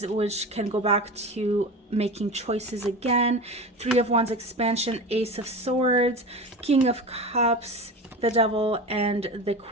which can go back to making choices again. 3 of Wands expansion, Ace of Swords, King of Cups, the Devil, and the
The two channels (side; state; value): both; normal; correlation 0.29